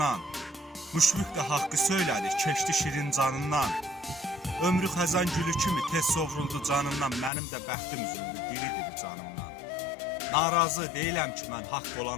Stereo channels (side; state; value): right; drops out; at 7.3 s